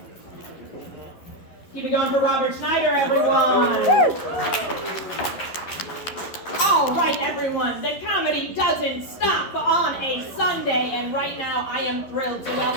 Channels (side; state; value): right; late; 12 ms